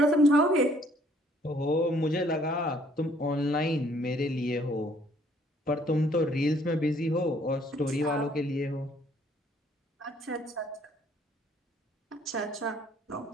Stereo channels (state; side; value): normal; both; correlation 0.62